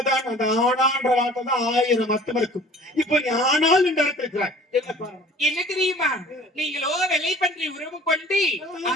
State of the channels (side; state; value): both; normal; correlation 0.48